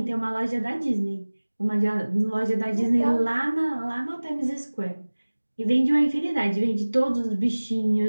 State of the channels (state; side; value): inverted; both; correlation -1.00